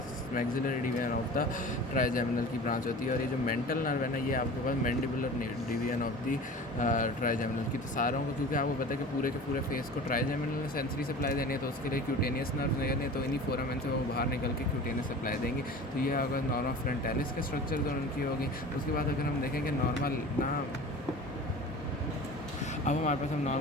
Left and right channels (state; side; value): normal; both; correlation 0.38